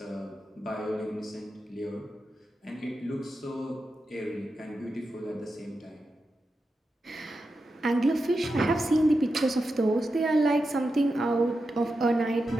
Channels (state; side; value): normal; both; correlation 0.89